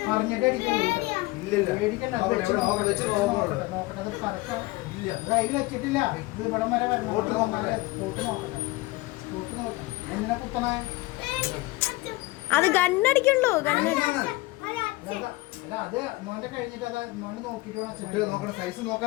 വെച്ചിട്ടില്ല ഇത് ഇവിടം വരെ എന്തിനാ കുത്തണേ അത് ഗണ്ണടിക്കുള്ളൂ അത് മോന്റെ കഴിഞ്ഞിട്ട് അത് മോന് നോക്കിട്ട് നോക്കണ സൈസ്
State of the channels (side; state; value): right; quieter; 21.5 dB